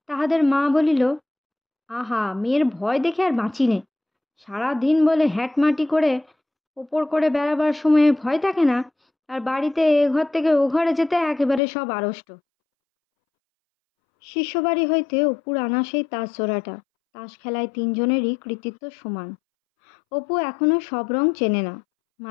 তাহাদের মা বলিল, আহা, মেয়ের ভয় দেখে আর বাঁচি নে। সারাদিন বলে হ্যাটমাটি করে ওপর করে বেড়াবার সময়ে ভয় থাকে না, আর বাড়িতে এ ঘর থেকে ও ঘরে যেতে একেবারে সব আড়ষ্ট। শিষ্যবাড়ি হইতে অপুর আনা সেই তাস জোড়াটা। তাস খেলায় 3 জনেরই কৃতিত্ব সমান। অপু এখনো সব রং চেনে না।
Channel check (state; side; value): drops out; right; at 11.6 s